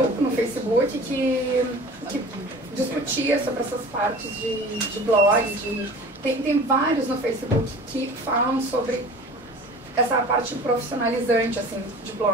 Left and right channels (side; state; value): both; normal; correlation 0.41